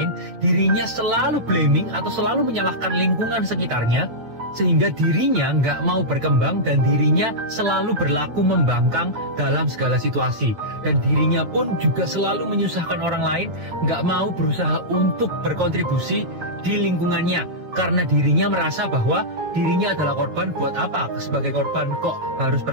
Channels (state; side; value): late; left; 9.0 ms